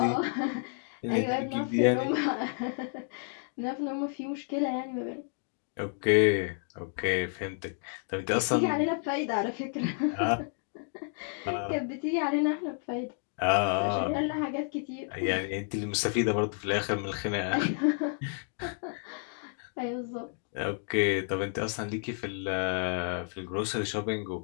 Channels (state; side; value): silent; right; 57 dB below the other